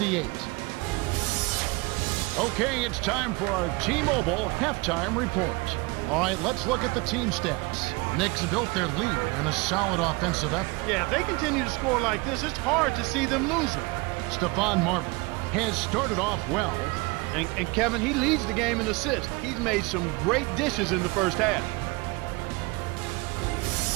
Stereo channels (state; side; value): quieter; left; 25.6 dB